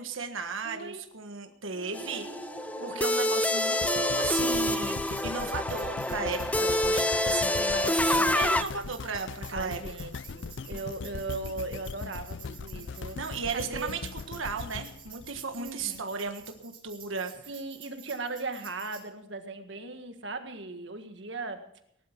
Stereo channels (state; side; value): normal; both; correlation 0.37